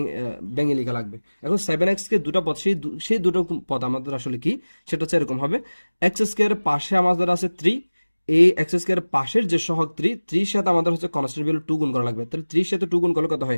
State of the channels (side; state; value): both; inverted; correlation -1.00